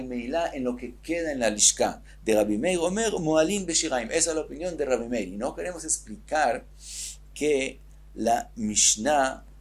meilá en lo que queda en la lishka. De Rabbi Meir Omer moalin beshiraim. Esa es la opinión de Rabbi Meir. Y no queremos explicar que la Mishnah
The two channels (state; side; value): identical; both; correlation 1.00